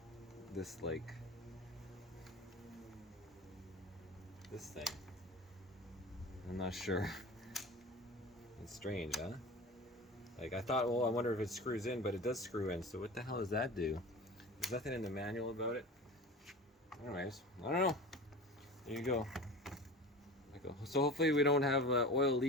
this thing. I'm not sure. It's strange, huh? Like I thought, well, I wonder if it screws in, but it does screw in. So what the hell does that do? There's nothing in the manual about it. Anyways, I don't know. There you go. So hopefully we don't have oil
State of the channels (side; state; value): both; normal; correlation 0.34